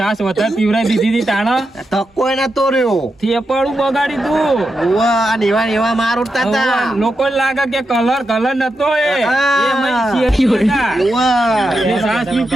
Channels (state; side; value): normal; both; correlation 0.87